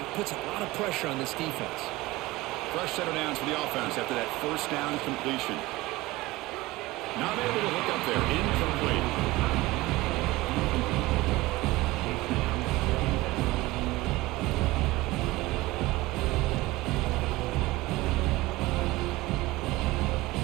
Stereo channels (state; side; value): quieter; left; 19.8 dB